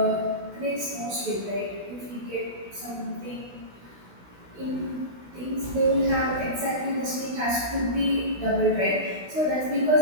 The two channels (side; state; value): left; late; 16 ms